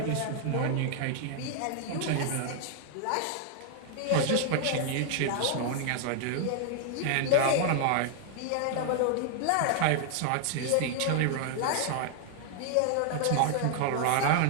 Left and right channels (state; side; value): different; both; correlation 0.00